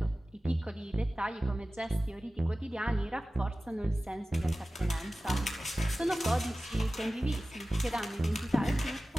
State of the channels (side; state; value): both; normal; correlation 0.96